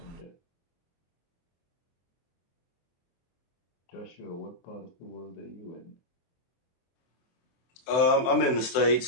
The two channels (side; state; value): right; late; 24 ms